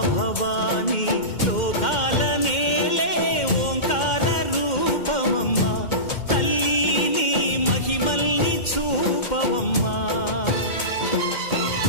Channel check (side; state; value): right; late; 2.1 ms